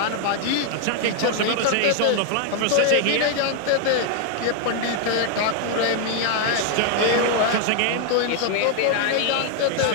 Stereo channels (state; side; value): different; both; correlation 0.00